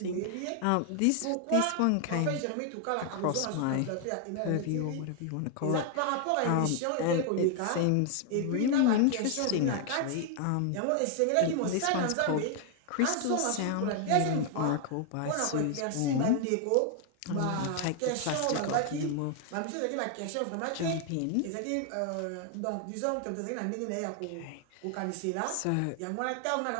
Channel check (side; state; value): both; different; correlation 0.00